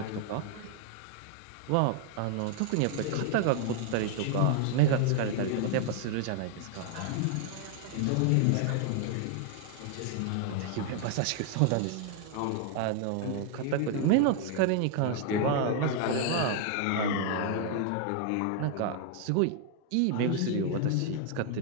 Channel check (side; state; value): both; different; correlation 0.00